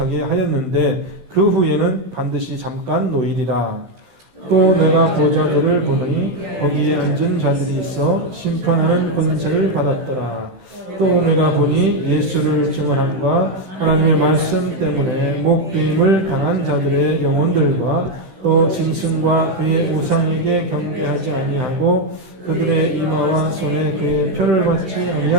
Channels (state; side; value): late; left; 16 ms